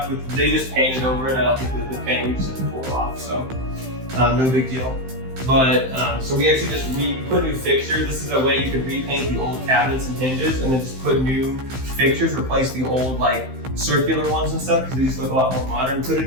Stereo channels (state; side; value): late; left; 15 ms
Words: with, they just painted over it. I don't think the paint, we just had to pull it off, so no big deal. But, so we actually we put new fixtures. This is a way you could repaint the old cabinets and hinges and then just put new fixtures, replace the old like circular ones and stuff, because these look a lot more modern. Put a